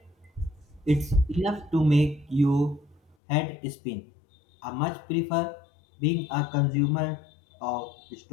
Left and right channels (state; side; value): drops out; right; at 3.2 s